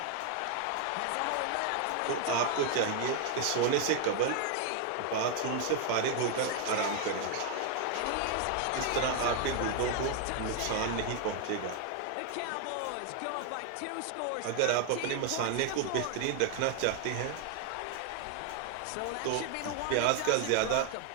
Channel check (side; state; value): both; different; correlation 0.00